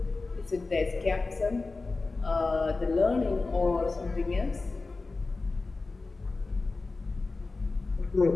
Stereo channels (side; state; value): right; quieter; 3.7 dB